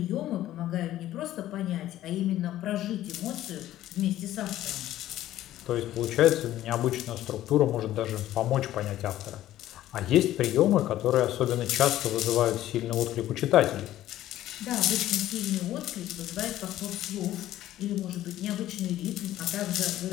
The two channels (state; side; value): quieter; right; 13.7 dB